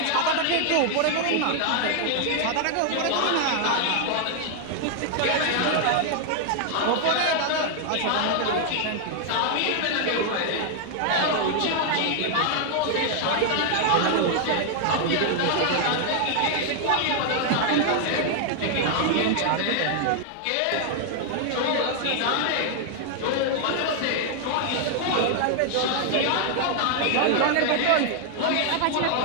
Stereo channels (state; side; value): different; both; correlation 0.00